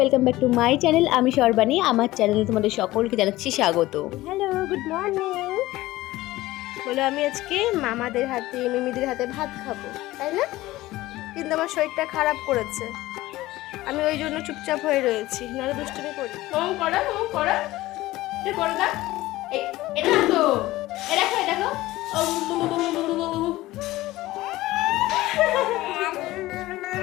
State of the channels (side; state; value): right; quieter; 17.5 dB